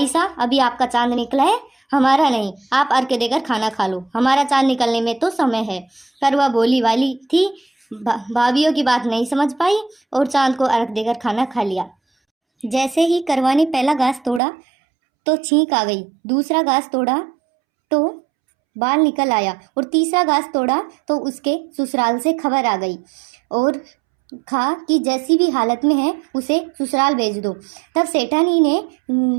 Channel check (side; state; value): left; drops out; at 14.4 s